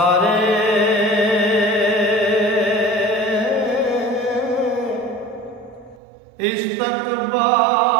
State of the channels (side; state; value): left; drops out; at 6.0 s